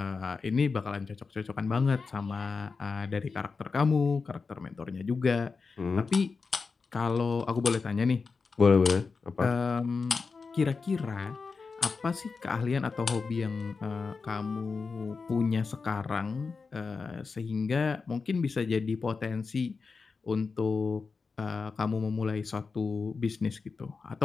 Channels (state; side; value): quieter; right; 4.7 dB